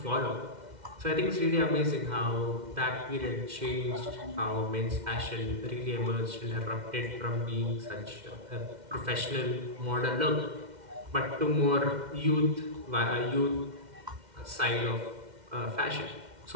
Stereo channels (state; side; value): late; left; 2.1 ms